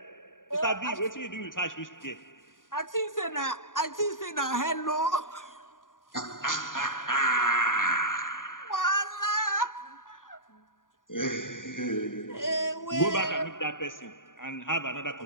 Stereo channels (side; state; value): right; late; 0.89 ms